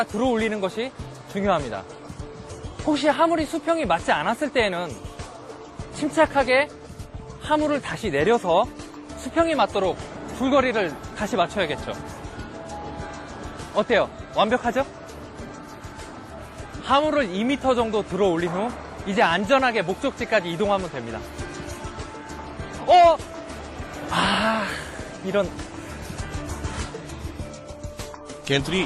들어 올리는 것이 중요합니다. 혹시 화물이 수평이 맞지 않았을 때에는 침착하게 화물을 다시 내려서 수평이 맞도록 줄거리를 다시 맞춰야겠죠. 어때요? 완벽하죠? 화물을 2m 정도 들어 올린 후 이제 안전하게 목적지까지 이동하면 됩니다. 이런. 겐트리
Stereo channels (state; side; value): identical; both; correlation 1.00